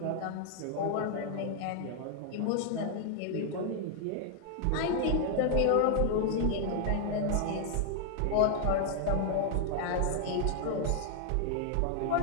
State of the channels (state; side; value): different; both; correlation 0.00